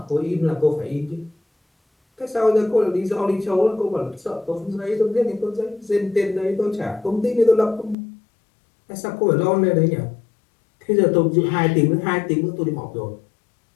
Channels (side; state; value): right; drops out; at 8.0 s